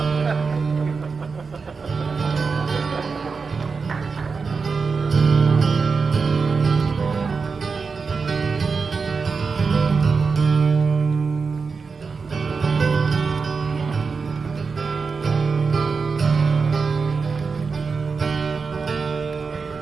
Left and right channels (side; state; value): left; quieter; 4.9 dB